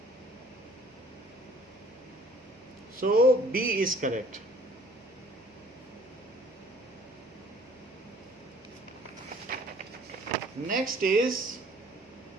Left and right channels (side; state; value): right; noise; hum, 30 dB below the sound